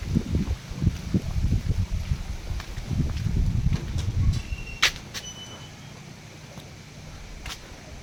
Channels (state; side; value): identical; both; correlation 1.00